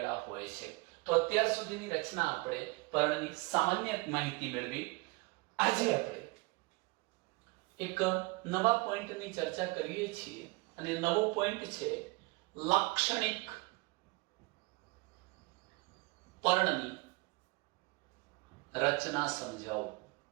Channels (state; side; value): quieter; left; 25.7 dB